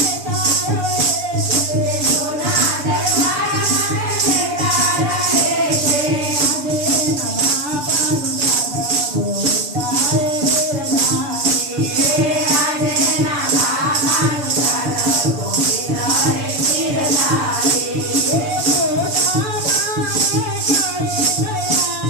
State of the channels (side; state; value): left; late; 6.8 ms